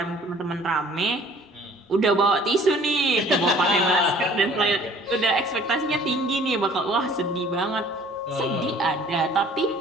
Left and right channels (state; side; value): normal; both; correlation 0.53